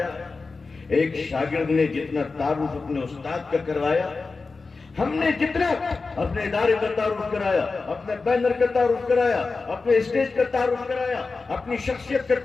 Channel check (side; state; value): right; quieter; 4.1 dB